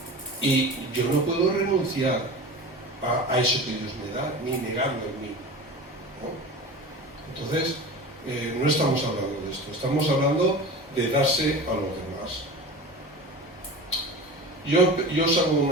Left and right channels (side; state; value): both; normal; correlation 0.33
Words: Y yo no puedo renunciar a eso que Dios me da, ni negarlo en mí, ¿no? Entonces, no estamos hablando de esto, estamos hablando de darse a los demás. yo os hago